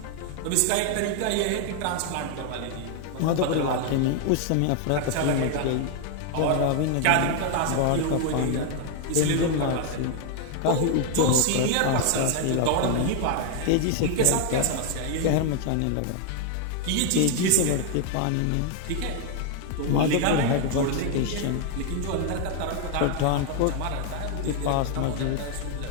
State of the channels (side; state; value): both; different; correlation 0.00